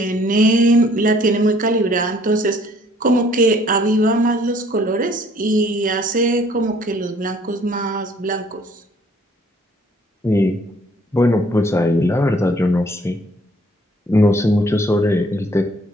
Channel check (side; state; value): both; normal; correlation 0.60